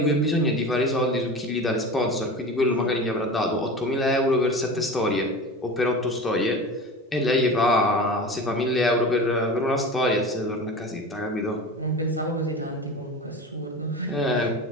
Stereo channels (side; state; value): both; normal; correlation 0.32